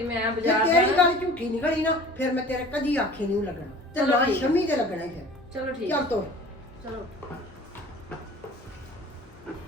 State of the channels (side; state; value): both; normal; correlation 0.44